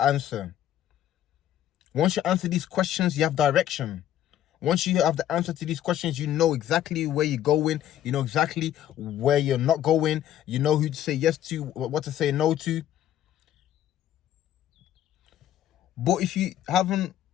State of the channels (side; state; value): right; quieter; 11.5 dB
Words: answer. Once you answer these questions, you have direction. Once you have the answer to these questions, you know exactly where you're going. You know exactly where you're not going. You know who to say yes to, what to say no to. But if you haven't